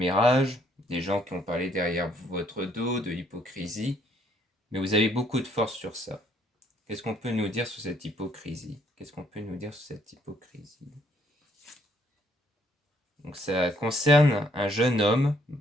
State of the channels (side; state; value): both; normal; correlation 0.66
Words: des gens qui ont parlé derrière votre dos, de l'hypocrisie, mais vous avez beaucoup de force sur ça. Qu'est-ce qu'on peut nous dire sur cette hypocrisie? Qu'est-ce qu'on peut nous dire sur cette hypocrisie? Donc ça concerne un jeune homme